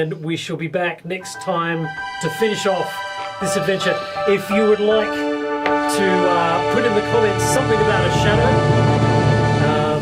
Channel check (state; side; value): identical; both; correlation 1.00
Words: we shall be back next time to finish off this adventure. If you would like to put in the comments something about a shadow,